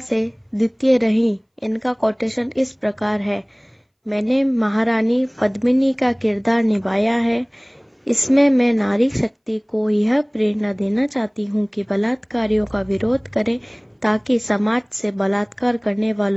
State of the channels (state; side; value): identical; both; correlation 1.00